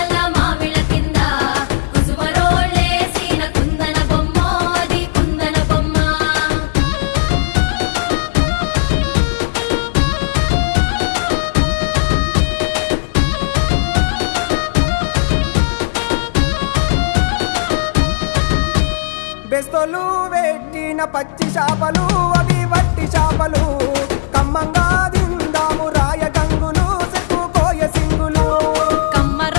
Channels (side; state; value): right; silent; digital silence